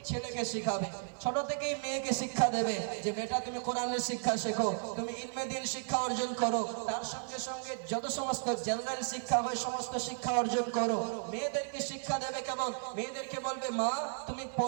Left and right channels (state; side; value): silent; left; 55 dB below the other